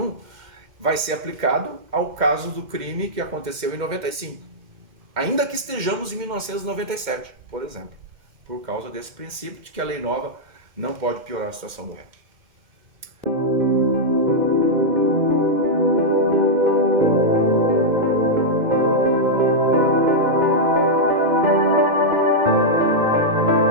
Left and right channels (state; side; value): late; left; 2.1 ms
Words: vai ser aplicado ao caso do crime que aconteceu em 95, ainda que estejamos em 1997, por exemplo, por causa desse princípio de que a lei nova não pode piorar a situação do réu.